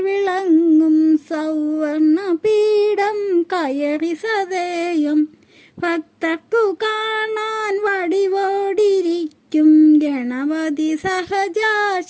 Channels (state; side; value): identical; both; correlation 1.00